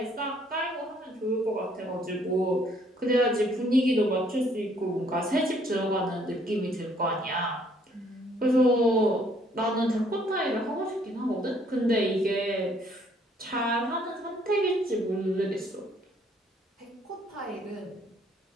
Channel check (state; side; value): normal; both; correlation 0.64